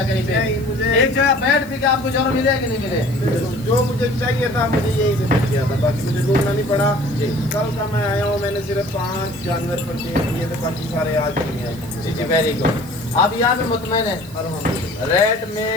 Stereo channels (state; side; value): noise; right; hiss, 22 dB below the sound